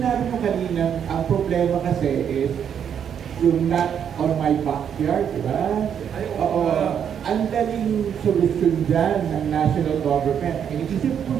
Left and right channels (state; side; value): quieter; left; 8.3 dB